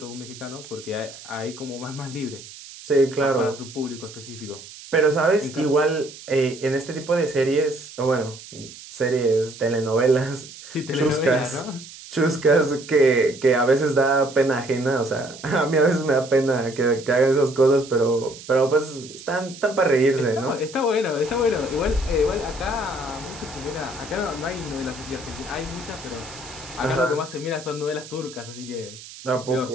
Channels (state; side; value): noise; right; hiss, 16 dB below the sound